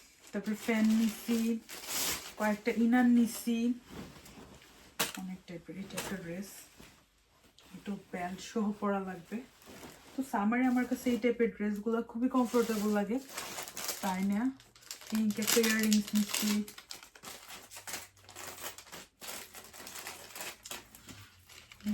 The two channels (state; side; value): identical; both; correlation 1.00